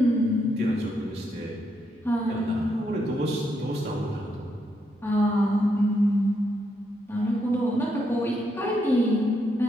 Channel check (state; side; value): normal; both; correlation 0.78